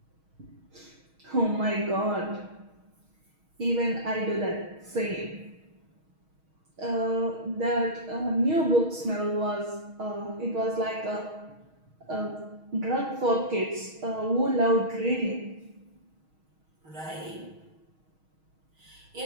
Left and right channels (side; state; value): left; late; 6.3 ms